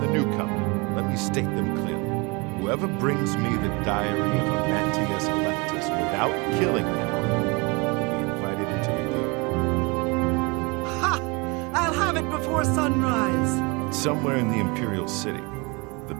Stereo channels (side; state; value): left; quieter; 28.2 dB